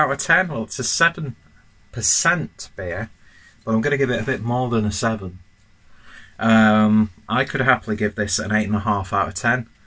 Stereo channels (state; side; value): identical; both; correlation 1.00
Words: of 10? Well, it's a 7% beer, but I'm going to give it a bit more than a 7. I could happily give this an 8.5 out of 10.